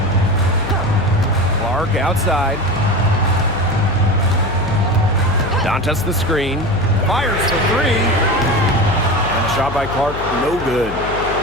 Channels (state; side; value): noise; left; hum, 9 dB below the sound